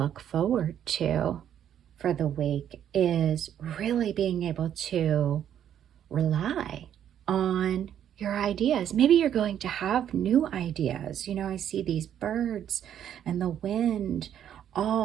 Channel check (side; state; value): left; quieter; 9.9 dB